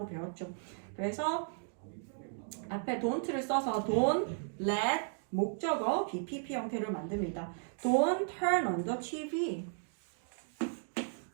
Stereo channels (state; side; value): silent; left; digital silence